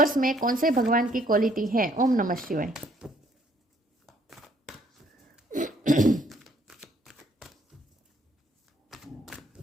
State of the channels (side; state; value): both; normal; correlation 0.64